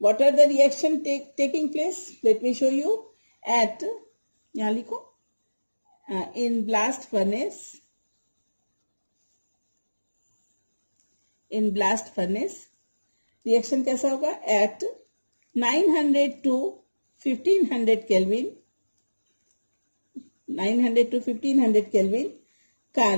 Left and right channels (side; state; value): both; inverted; correlation -1.00